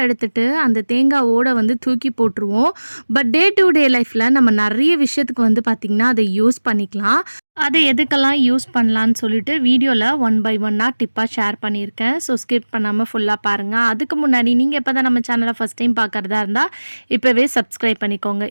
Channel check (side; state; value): both; inverted; correlation -1.00